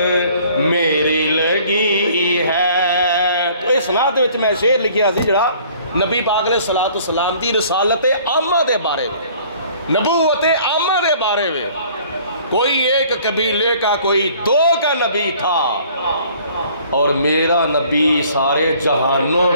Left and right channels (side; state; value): both; inverted; correlation -0.55